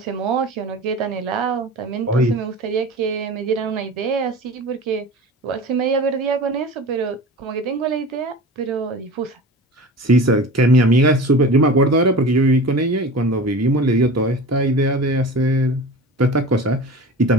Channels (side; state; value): both; normal; correlation 0.34